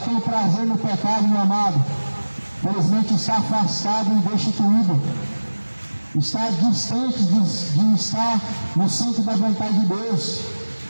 prazer no pecado, meu amado, felizmente está afastado e destituído, está distante de estar no centro da vontade de Deus.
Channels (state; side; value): inverted; both; correlation -1.00